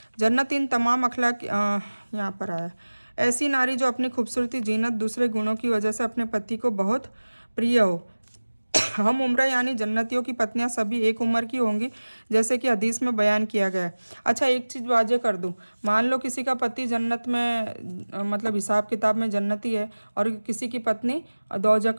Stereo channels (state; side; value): inverted; both; correlation -1.00